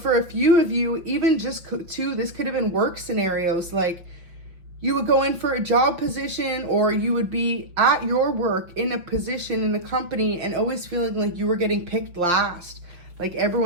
for a few of you, even just two, this could have been work scenarios. Like, you would go in for a job position, or you would be at your work in a position in a company and always feeling like you were getting picked last, like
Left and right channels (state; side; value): late; left; 6.2 ms